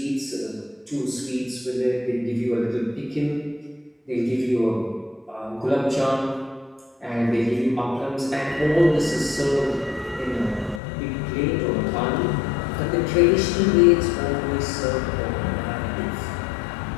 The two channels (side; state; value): right; drops out; at 10.8 s